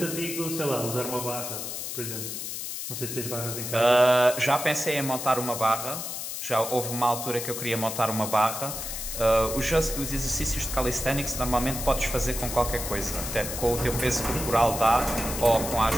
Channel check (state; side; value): noise; left; hiss, 6 dB below the sound